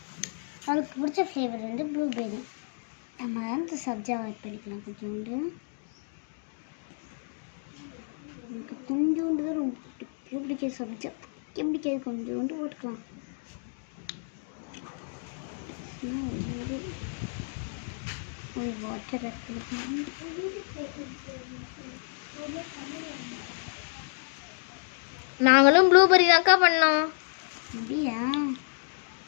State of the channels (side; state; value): right; silent; 58 dB below the other